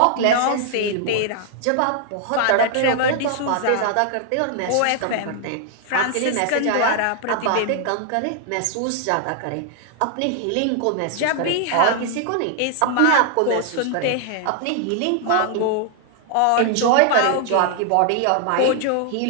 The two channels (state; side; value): different; both; correlation 0.00